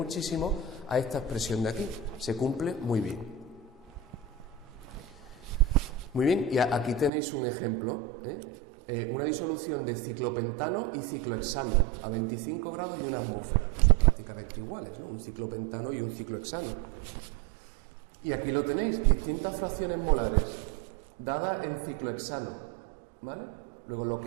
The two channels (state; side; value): drops out; left; at 7.1 s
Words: a esta expresión de aquí. Se cumple muy bien. Muy bien, y aquí tenéis un ejemplo, una disolución de ciclopentano y ciclohexano a 25 grados y una atmósfera. Pues son prácticamente iguales, ¿no? Un ciclopentano y un ciclohexano. Y aquí lo tenéis, distintas fracciones molares dadas en ciclohexano, ¿vale? Luego lo